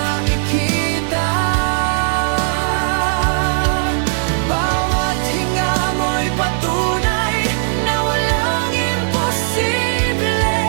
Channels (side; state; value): left; silent; digital silence